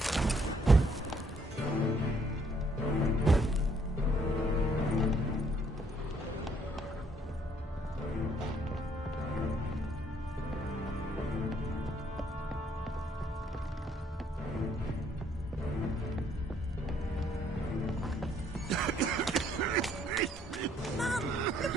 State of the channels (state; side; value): normal; both; correlation 0.67